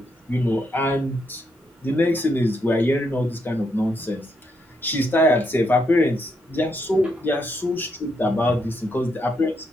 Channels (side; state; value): both; normal; correlation 0.78